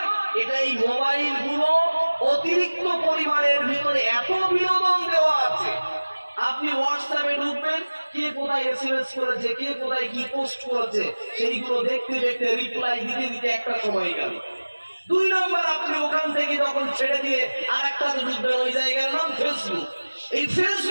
এটা এই মোবাইল গুলো অতিরিক্ত পরিমাণের ভিতরে এত বিনোদন দেওয়া আছে। আপনি হোয়াটসঅ্যাপে ঢুকবেন, কে কোথায় এসএমএস করেছে, কে কোথায় কি পোস্ট করেছে, সেইগুলো দেখতে দেখতে রিপ্লাই দিতে দিতে একটা সময় গেল। 2 নম্বর, আপনি ওখান থেকে যখন ছেড়ে দিয়ে আর একটা ঢুকবেন, ওই জায়গার নাম ফেসবুক। এই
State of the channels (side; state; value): both; inverted; correlation -1.00